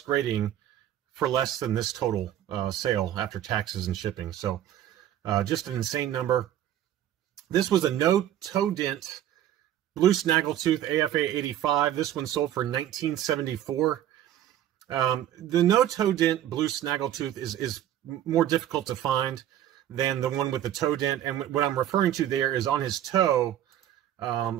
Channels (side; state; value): left; quieter; 11.6 dB